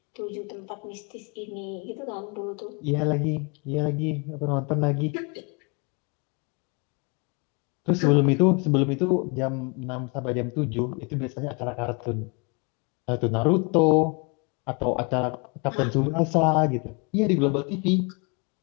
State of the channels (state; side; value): quieter; right; 32.1 dB